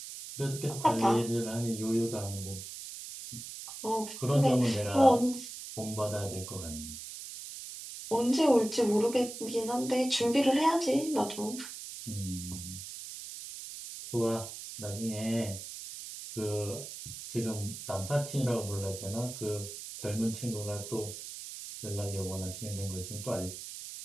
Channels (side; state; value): right; noise; hiss, 10 dB below the sound